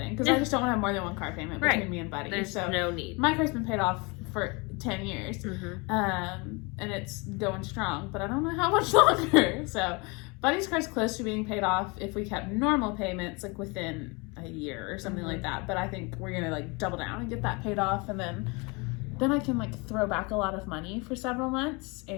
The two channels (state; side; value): quieter; right; 28.5 dB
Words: Because I just don't want to have more than one car payment between me and Buddy. There's no need. My car's been paid off for 10 years. And it's going strong, but I don't know how much longer. So Buddy's car's close to being paid off if we kept normal payments, like within a year or something like that. But I think we're gonna like double down and get that paid off, and then I can like throw back a lot of money for several months